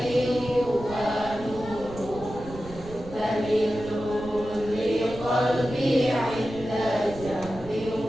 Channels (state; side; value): noise; right; rumble, 14 dB below the sound